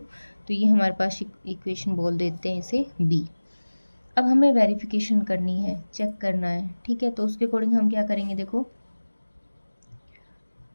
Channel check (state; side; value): inverted; both; correlation -1.00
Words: तो ये हमारे पास इक्वेशन बोल देते हैं इसे बी। अब हमें वेरिफिकेशन करनी है, चेक करना है। ठीक है, तो उसके अकॉर्डिंग हम क्या करेंगे, देखो